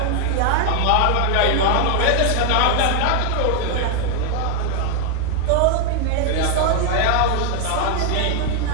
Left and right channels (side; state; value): both; different; correlation 0.00